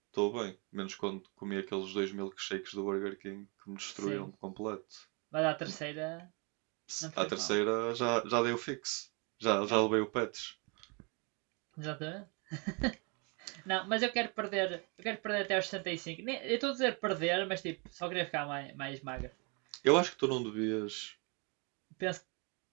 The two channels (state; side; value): quieter; left; 32.5 dB